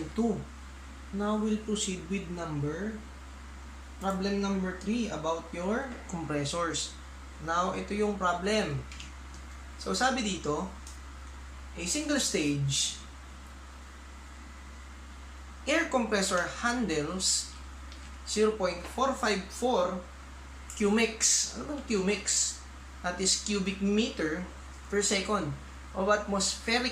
2. Now, we'll proceed with problem number 3 about your compressors. Now, ito yung problem. So, sabi dito, a single stage air compressor handles 0.454 Qmix. Ano bang Qmix? That is cubic meter per second of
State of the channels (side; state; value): both; identical; correlation 1.00